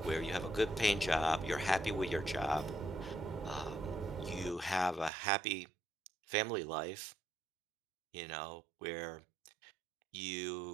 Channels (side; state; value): left; drops out; at 5.1 s